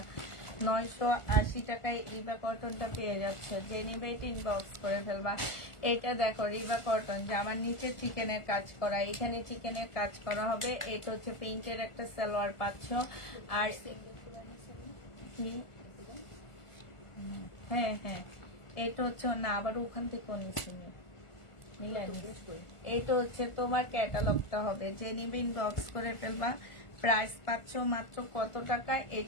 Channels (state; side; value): late; right; 1.4 ms